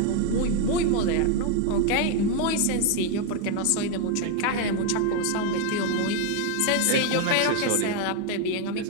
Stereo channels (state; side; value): different; both; correlation 0.01